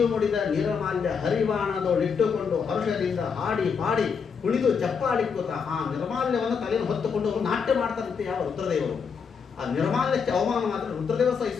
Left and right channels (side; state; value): right; quieter; 6.1 dB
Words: ಮುಡಿದ ನಿರ್ಮಾಲ್ಯ ಹರಿವಾಣದೊಳಿಟ್ಟುಕೊಂಡು ಹರ್ಷದಿಂದ ಹಾಡಿ ಪಾಡಿ ಕುಣಿದು ಚಪ್ಪಾಳಿಕೋತ ಆ ನಿರ್ಮಾಲ್ಯವನ್ನು ತಲೆಯನ್ನು ಹೊತ್ತುಕೊಂಡು ಅವರು ನಾಟ್ಯ ಮಾಡ್ತಾರಂತೆ ಯಾವ ರುದ್ರದೇವರು. ಆ ನಿರ್ಮಾಲ್ಯಕ್ಕೆ ಅವಮಾನ ಮಾತ್ರ ರುದ್ರದೇವ